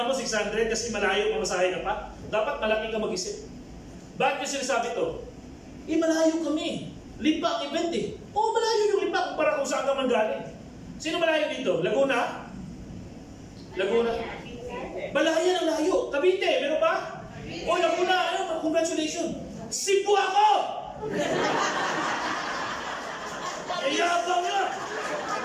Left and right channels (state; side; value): identical; both; correlation 1.00